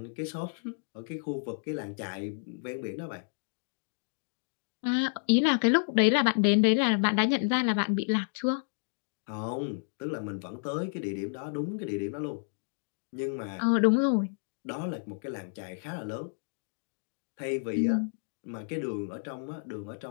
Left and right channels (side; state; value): right; silent; digital silence